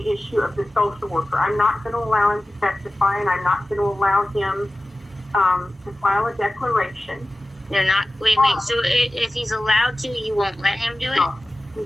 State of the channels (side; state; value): both; normal; correlation 0.96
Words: issue of the social worker. I'm not going to allow him to testify, and I'm not going to allow him to file a declaration. They're not. Wait. So if he's allowed to, you won't let him do it? No,